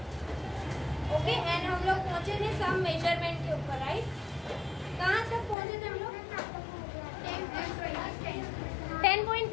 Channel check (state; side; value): drops out; right; at 5.6 s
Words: ओके एंड हम लोग पहुंचे थे सम मेजरमेंट के ऊपर, राइट? कहाँ तक पहुंचे थे हम लोग?